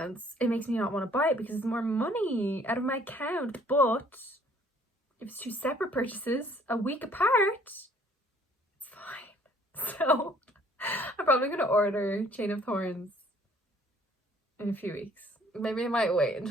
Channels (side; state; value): both; normal; correlation 0.59